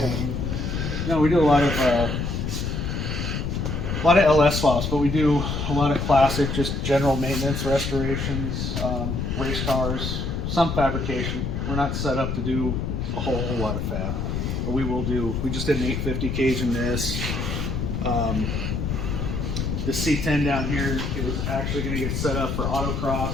No, we do a lot of LS swaps, but we do a lot of classic, just general maintenance, restorations, race cars, some fabrication. We're not set up to do a whole lot of fab, but we will do. We just did an 850 cage in this. The C10 down here is actually going to get set up for autocross.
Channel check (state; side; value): noise; left; rumble, 2 dB below the sound